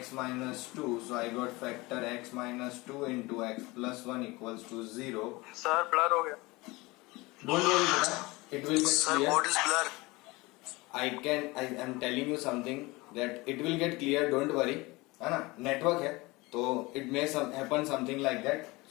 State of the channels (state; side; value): quieter; right; 22.7 dB